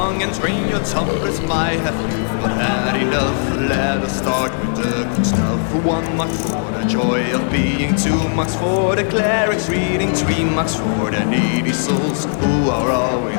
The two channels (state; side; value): silent; right; 67 dB below the other